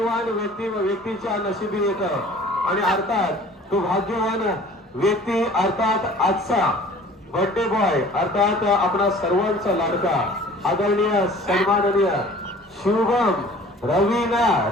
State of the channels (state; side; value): normal; both; correlation 0.48